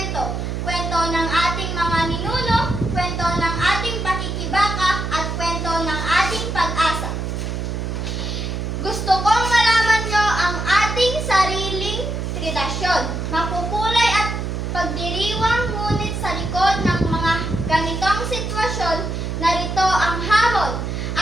Kwento ng ating mga ninuno, kwento ng ating pakikibaka, at kwento ng ating pag-asa. Gusto kong malaman nyo ang ating sariling tradisyon. Makukulay at pagdiriwang, ngunit sa likod ng mga ganitong sitwasyon, narito ang hamon.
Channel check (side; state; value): right; noise; hum, 3 dB below the sound